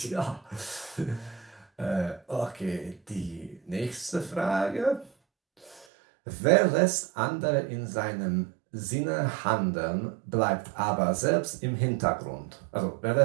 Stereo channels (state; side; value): drops out; left; at 5.9 s